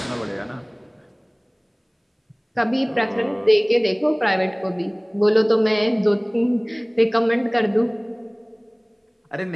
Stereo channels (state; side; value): identical; both; correlation 1.00